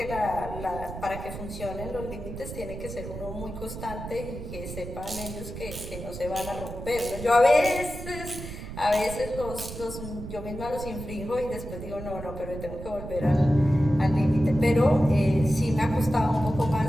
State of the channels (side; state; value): right; noise; rumble, 10 dB below the sound